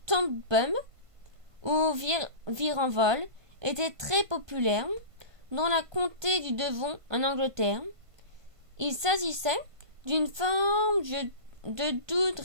ou Virenvol, était très populaire dans la comté du Devon en Angleterre. Il s'agissait d'une forme de doute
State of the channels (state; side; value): late; left; 1.2 ms